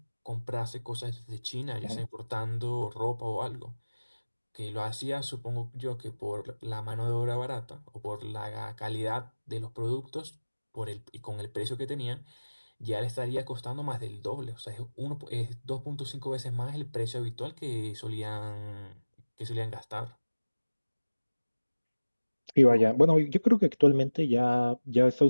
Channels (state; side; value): inverted; both; correlation -1.00